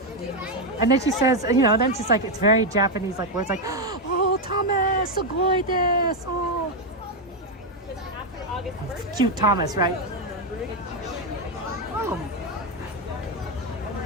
And then she says, you know, then she's like, it's very Japanese, like words like, oh, Thomas, sugoi desu. Oh. Cute Thomas, right?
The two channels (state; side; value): normal; both; correlation 0.04